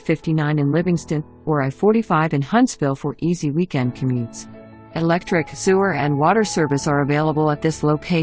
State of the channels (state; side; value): identical; both; correlation 1.00